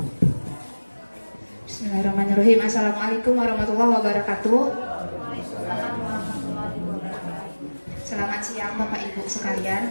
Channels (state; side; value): inverted; both; correlation -1.00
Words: Bismillahirrahmanirrahim. Assalamualaikum warahmatullahi wabarakatuh. Selamat siang Bapak Ibu